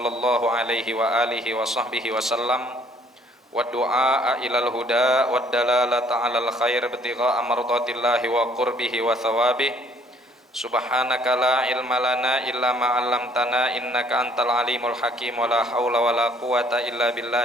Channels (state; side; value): normal; both; correlation 0.61